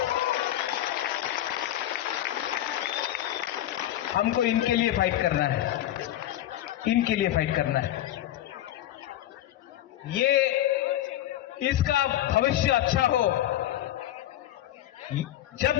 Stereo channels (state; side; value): quieter; right; 13.1 dB